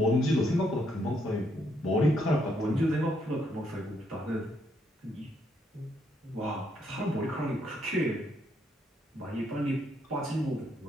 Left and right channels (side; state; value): both; normal; correlation 0.74